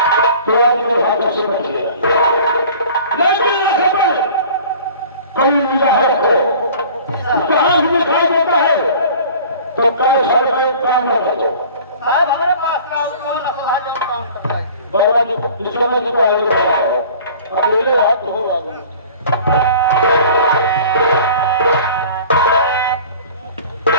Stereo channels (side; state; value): both; inverted; correlation -0.45